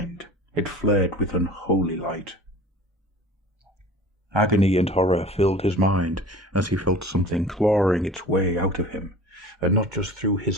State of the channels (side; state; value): both; normal; correlation 0.42